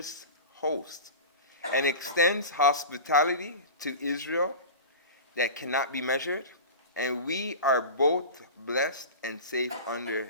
host, and extends hospitality to Israel that cannot be measured, and we are both blessed and safe under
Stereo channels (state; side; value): inverted; both; correlation -0.31